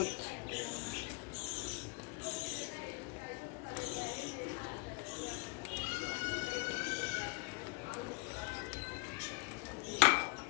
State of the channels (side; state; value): right; quieter; 30.3 dB